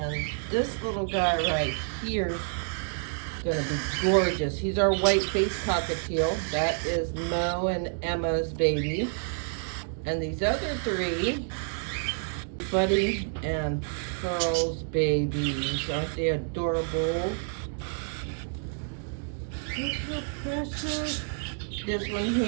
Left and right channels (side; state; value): left; silent; 59 dB below the other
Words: this little guy right here is gonna be gorgeous. He's our white-faced cockatiel. That is Mo and Emma's baby. And these other three, Buddy and Pearl's babies. Aren't they adorable? Look how precious. This one